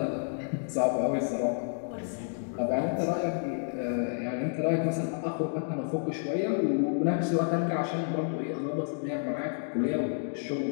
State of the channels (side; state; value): right; silent; digital silence